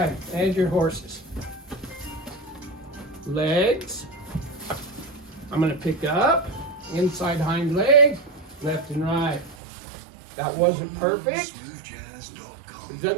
and your horses. Legs. I'm going to pick up, inside hind leg, left and right. That wasn't perfect. It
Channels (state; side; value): drops out; left; at 9.6 s